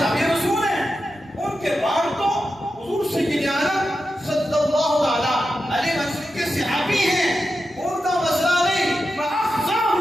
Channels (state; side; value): normal; both; correlation 0.90